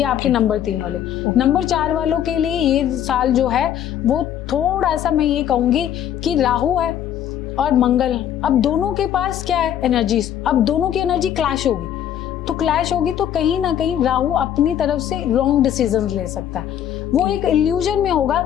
आपके नंबर 3 वाले। नंबर 4 वालों के लिए ये साल जो है वो थोड़ा सा, मैं ये कहूँगी कि राहु है और मंगल, अब दोनों के पास क्या है एनर्जीज, अब दोनों की एनर्जी क्लैश होगी। तो कहीं ना कहीं राहु अपनी तरफ से रॉन्ग डिसीजंस ले सकता है। वो एक इल्यूजन में होगा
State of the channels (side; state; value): right; quieter; 10.4 dB